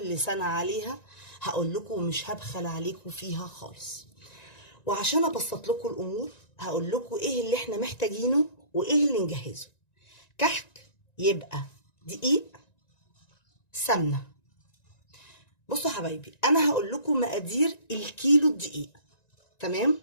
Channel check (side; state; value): right; late; 1.9 ms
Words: سنه عليها هقول لكم، ومش هبخل عليكم فيها خالص. وعشان ابسط لكم الامور هقول لكم ايه اللي احنا محتاجينه وايه اللي نجهزه. كحك يبقى دقيق، سمنه. بصوا حبايبي، انا هقول لكم مقادير الكيلو الدقيق. تمام؟